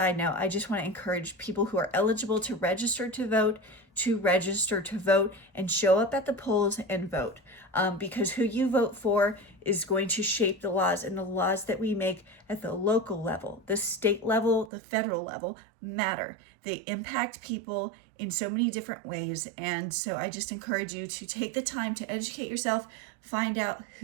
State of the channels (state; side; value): drops out; left; at 14.7 s